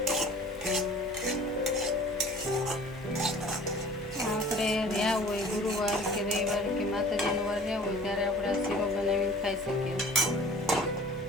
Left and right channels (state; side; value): noise; left; hum, 23 dB below the sound